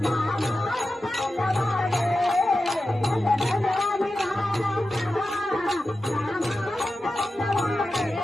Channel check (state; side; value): normal; both; correlation 0.92